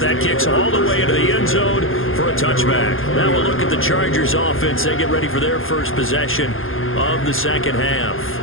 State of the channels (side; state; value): right; late; 0.60 ms